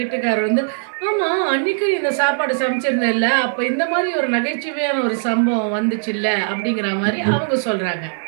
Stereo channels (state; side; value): silent; left; 66 dB below the other